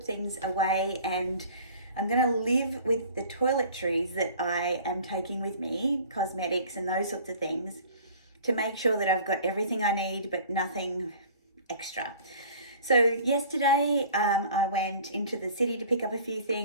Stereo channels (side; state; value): both; inverted; correlation -0.46